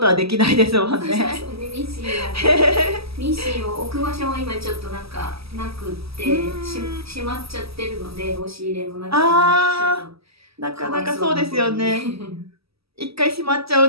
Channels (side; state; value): left; late; 0.77 ms